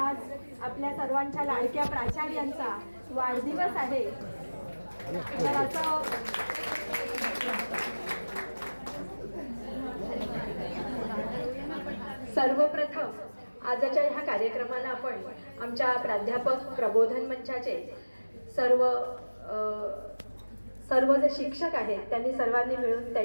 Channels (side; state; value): both; inverted; correlation -1.00